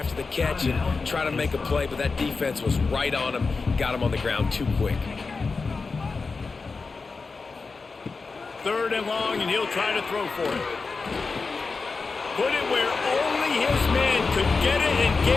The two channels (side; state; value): right; quieter; 4.4 dB